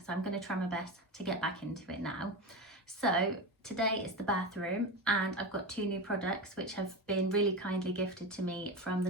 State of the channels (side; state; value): both; normal; correlation 0.21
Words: so I'm going to try my best to get back into it now. So today is the bathroom, and I've got two new products which have been really kindly gifted to me from the